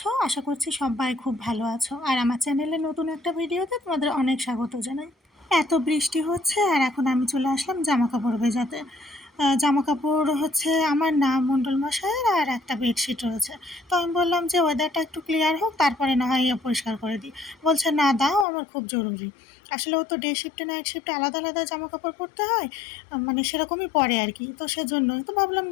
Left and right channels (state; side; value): drops out; right; at 18.4 s